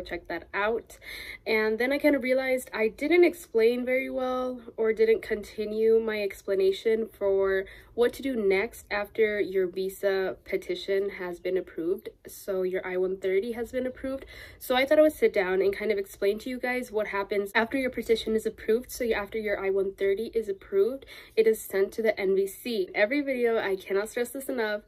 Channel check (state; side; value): identical; both; correlation 1.00